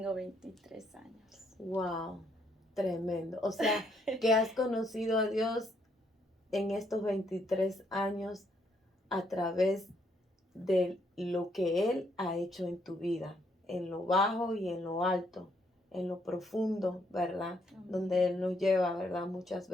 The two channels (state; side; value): normal; both; correlation 0.72